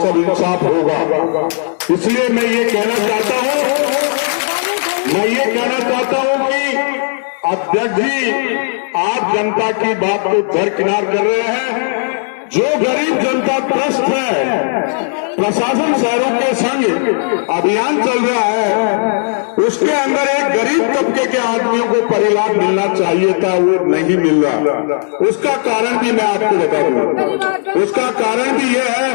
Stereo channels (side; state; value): right; silent; 63 dB below the other